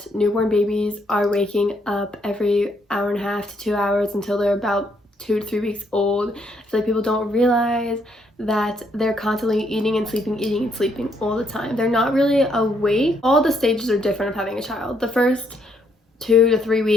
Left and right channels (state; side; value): normal; both; correlation 0.72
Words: newborn babies are waking up every hour and a half to 2 hours until they're about 2 to 3 weeks old. I feel like people don't realize that they're constantly eating and sleeping all the time. They're not really awake. All the stages are different of having a child. The first 2 to 3